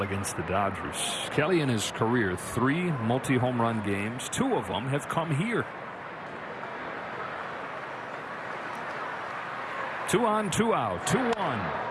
against the Dodgers. Kelly in his career, 3 multi-home run games. 2 of them have come here. 2 on, 2 out,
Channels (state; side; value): identical; both; correlation 1.00